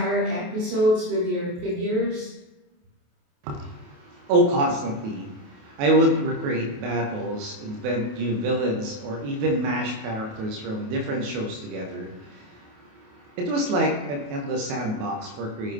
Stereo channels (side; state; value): left; late; 28 ms